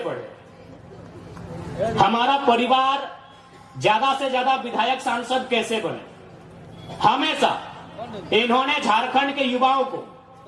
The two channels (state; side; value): identical; both; correlation 1.00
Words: बढ़े, हमारा परिवार ज्यादा से ज्यादा विधायक सांसद कैसे बने। हमेशा इन्होंने झारखंड के युवाओं को,